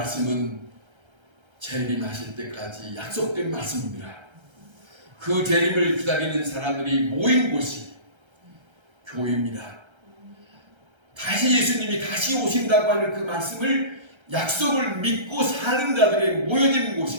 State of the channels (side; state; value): left; late; 1.3 ms